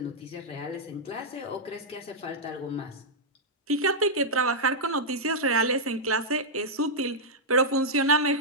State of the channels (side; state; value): both; normal; correlation -0.08